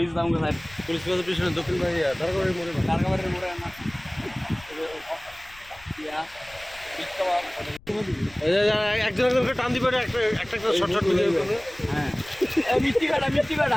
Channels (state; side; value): noise; left; rumble, 23 dB below the sound